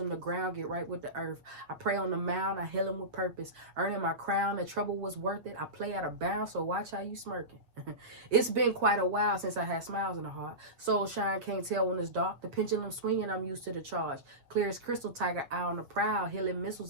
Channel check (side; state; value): left; late; 7.5 ms